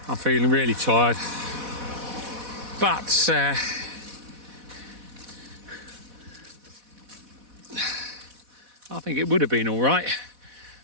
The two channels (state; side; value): late; left; 4.1 ms